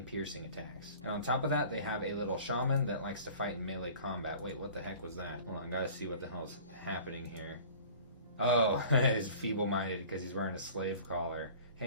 piercing attacks. And on top of that, they have a little shaman that likes to fight in melee combat. Wait, what the heck was that? Hold on, gotta see what the hell's happening here. Oh, he's feeble-minded because he's wearing a slave collar.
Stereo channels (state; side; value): inverted; both; correlation -0.45